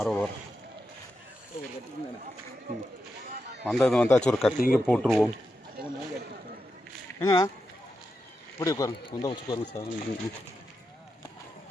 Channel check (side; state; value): both; normal; correlation 0.87